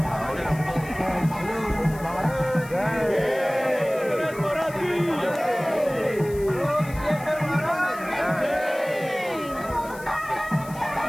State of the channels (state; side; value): noise; left; hiss, 19 dB below the sound